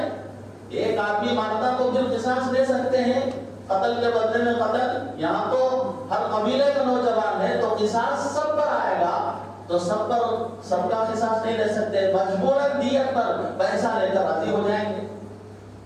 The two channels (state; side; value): identical; both; correlation 1.00